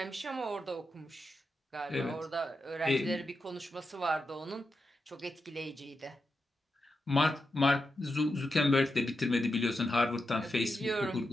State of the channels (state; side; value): normal; both; correlation 0.88